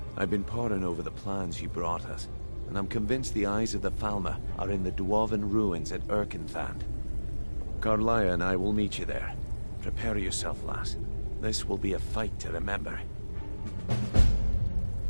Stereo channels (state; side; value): inverted; both; correlation -1.00